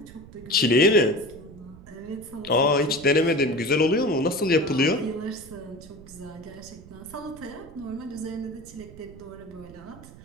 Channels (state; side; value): noise; right; rumble, 19 dB below the sound